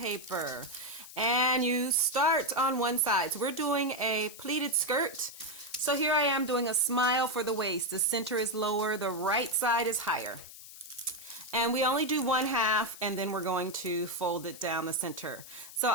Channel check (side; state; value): left; noise; hiss, 16 dB below the sound